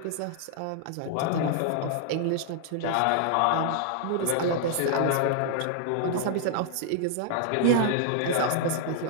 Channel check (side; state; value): both; different; correlation -0.01